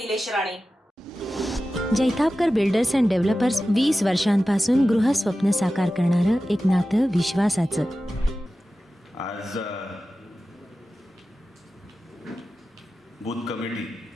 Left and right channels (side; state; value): both; normal; correlation 0.94